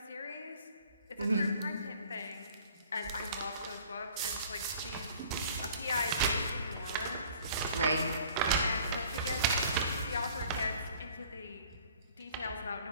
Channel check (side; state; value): both; inverted; correlation -0.52